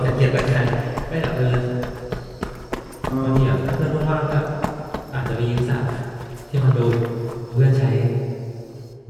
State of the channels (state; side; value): identical; both; correlation 1.00